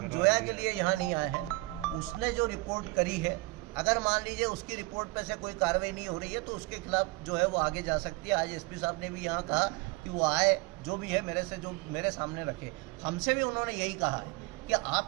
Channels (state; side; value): quieter; left; 23.2 dB